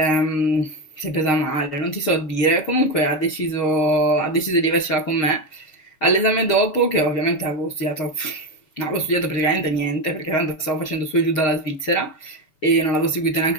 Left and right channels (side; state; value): right; late; 7.1 ms